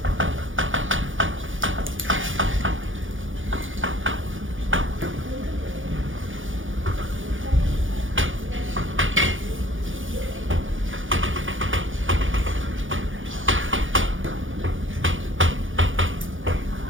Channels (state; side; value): late; left; 0.57 ms